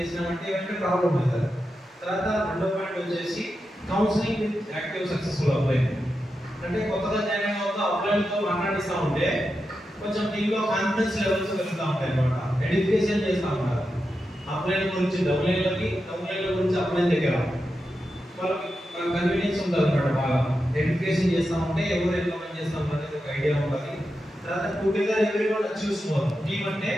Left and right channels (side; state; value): both; normal; correlation 0.89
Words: ఏమంటే ప్రాబ్లం అవుతుంది. తర్వాత రెండో పాయింట్ వచ్చేసి counselling with active successful upline. అంటే కొత్తగా జాయిన్ అవుతూ అప్లైన్తో మాట్లాడిస్తూ ఉంటే కొంచెం టీంలో కాన్ఫిడెన్స్ లెవెల్స్ పెరుగుతూ ఉంటాయి అనమాట. ఎడ్యుకేషన్ చేస్తూ ఉంటారు అప్లైన్ గురించి, డౌన్లైన్ల గురించి అప్లైన్ దగ్గర వాళ్ళకి కన్వీనియన్స్ ఉంటుంది అనమాట. బాగా ఎడ్యుకేషన్ చేస్తూ ఉంటే ఎవరు ఎంతమంది చేస్తాం అనేది ఒక ఐడియా ఉంటుంది. తర్వాత together everyone achieves more. Team అంటే